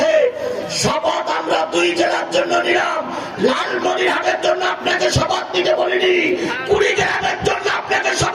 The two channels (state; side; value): identical; both; correlation 1.00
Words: শপথ আমরা 2 জেলার জন্য নিলাম। লালমনিরহাটের জন্য আপনাকে শপথ নিতে বলিনি, কুড়িগ্রামের জন্য আপনাকে